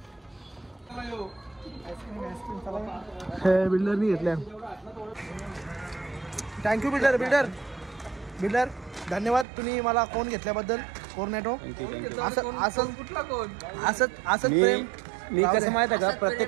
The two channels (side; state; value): left; drops out; at 9.5 s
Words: बिल्डरनी घेतल्या. थँक्यू बिल्डर धन्यवाद तुम्ही मला कोण घेतल्याबद्दल. कोर्नेटो असंच प्रेम. मी कसं माहिती आहे का,